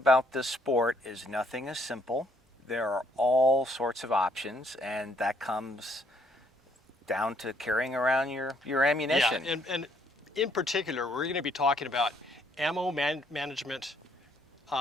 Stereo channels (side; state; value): both; normal; correlation 0.67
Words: this sport is nothing is simple. There are all sorts of options, and that comes down to carrying around your ammunition. Yeah, and in particular, we're going to be talking about ammo management